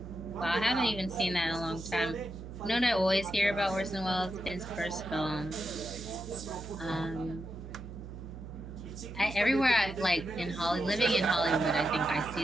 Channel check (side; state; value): right; noise; hum, 11 dB below the sound